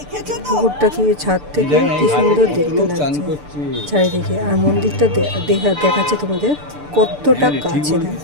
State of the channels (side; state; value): left; late; 6.8 ms